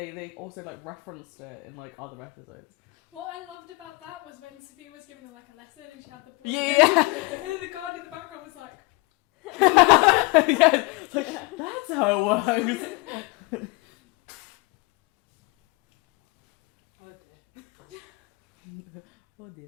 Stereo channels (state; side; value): quieter; right; 25.6 dB